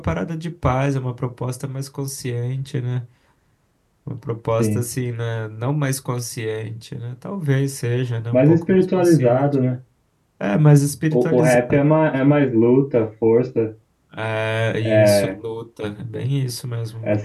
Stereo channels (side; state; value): both; identical; correlation 1.00